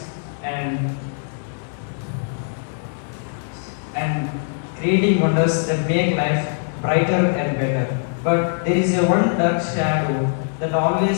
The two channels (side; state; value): right; silent; digital silence